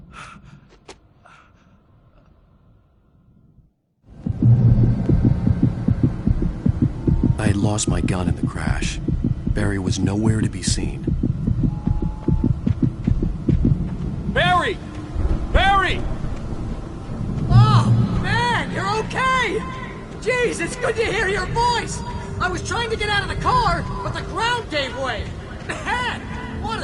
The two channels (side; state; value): both; identical; correlation 1.00